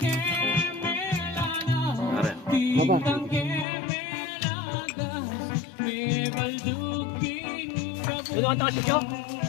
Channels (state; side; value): drops out; right; at 3.7 s